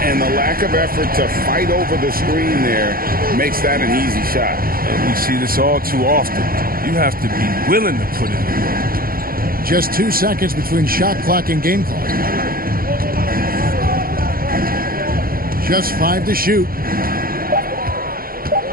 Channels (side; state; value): left; late; 0.42 ms